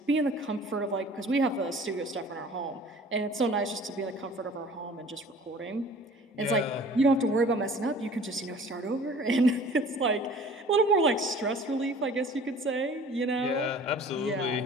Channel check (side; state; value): both; normal; correlation 0.48